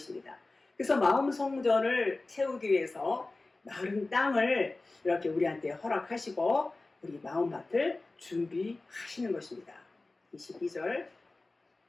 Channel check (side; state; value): right; quieter; 3.2 dB